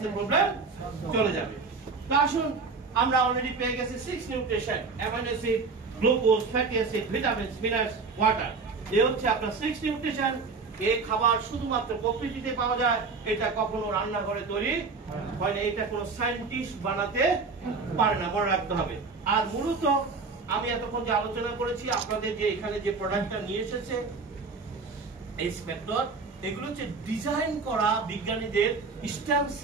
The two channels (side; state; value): left; quieter; 4.4 dB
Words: প্রবলেম চলে যাবে। তো আসুন, আমরা অলরেডি পেয়ে গেছি 6 nutrition: amino acid, glucose, fatty acid, vitamins, minerals, water. এই হচ্ছে আপনার 6 নিউট্রিশন। এই খাবার শুধুমাত্র প্রকৃতিতে পাওয়া যায়, এটা কখনো রান্নাঘরে তৈরি হয় না, এটা কোনো সায়েন্টিস্ট বানাতে পারে না, মনে রাখতে হবে। আর মূলত আমি এতক্ষণ যে আলোচনা করেছি, আপনাদের যে এখানে যে প্রোডাক্টটা নিয়ে এসেছে এই স্পেক্টর, এগুলো হচ্ছে ডিজাইন করা বিজ্ঞানীদের stem